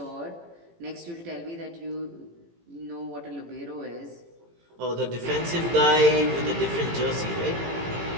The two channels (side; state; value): left; late; 18 ms